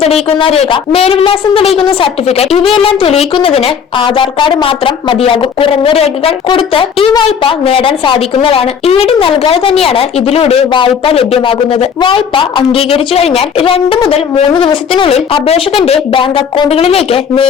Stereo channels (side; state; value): right; quieter; 7.1 dB